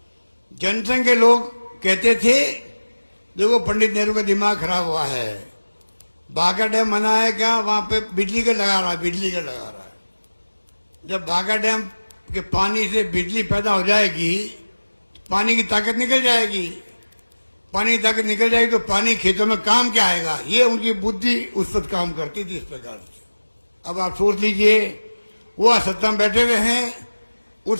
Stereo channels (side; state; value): both; inverted; correlation -1.00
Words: जनसंघ के लोग कहते थे देखो पंडित नेहरू का दिमाग खराब हुआ है, बाघा डैम बना है क्या, वहां पे बिजली का लगा रहा है, बिजली का लगा रहा है। जब बाघा डैम के पानी से बिजली पैदा हो जाएगी, पानी की ताकत निकल जाएगी, पानी की ताकत निकल जाएगी तो पानी खेतों में काम क्या आएगा। ये उनकी बुद्धि उस वक्त काम करती थी इस प्रकार से। अब आप सोच लीजिए, वो सत्ता में बैठे हुए हैं,